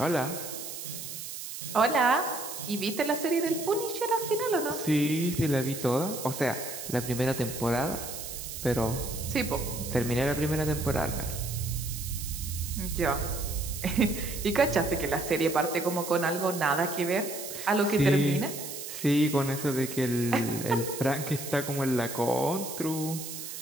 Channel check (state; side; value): noise; right; hiss, 8 dB below the sound